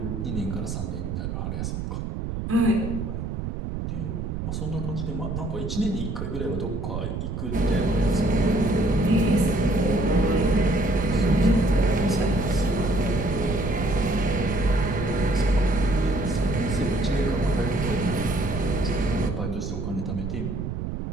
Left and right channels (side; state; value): right; noise; rumble, 4 dB below the sound